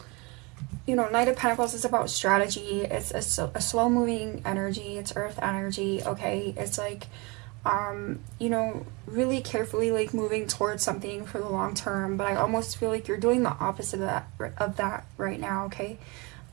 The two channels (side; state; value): left; quieter; 27.6 dB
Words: you know, Knight of Pentacles is about strategy. It's a slow-moving energy. It's earth energy, okay? It's like, you know, really carefully, like, moving towards something for the long term. But I almost feel like you're doing the opposite of that right now, okay?